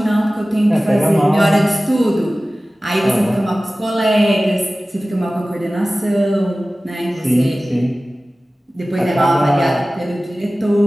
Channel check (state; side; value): normal; both; correlation 0.97